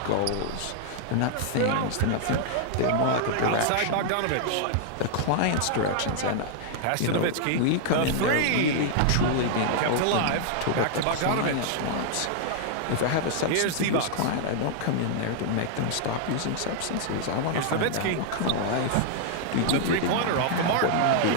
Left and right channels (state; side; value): different; both; correlation -0.01